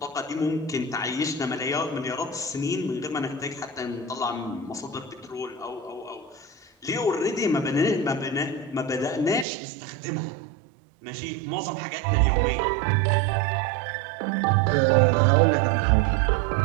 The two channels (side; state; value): left; drops out; at 9.5 s